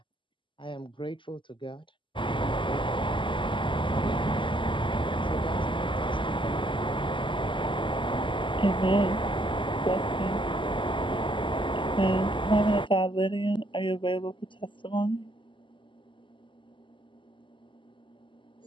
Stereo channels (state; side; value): late; right; 0.24 ms